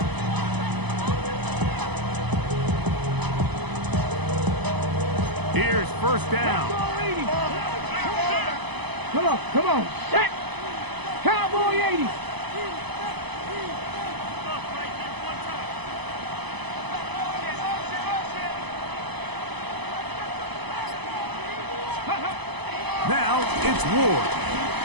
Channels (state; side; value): late; left; 0.99 ms